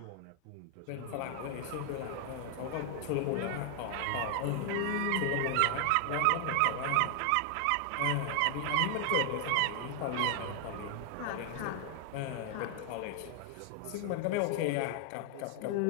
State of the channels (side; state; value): both; different; correlation 0.00